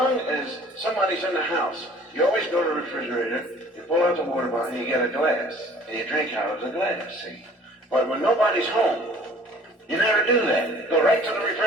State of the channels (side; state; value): both; normal; correlation 0.52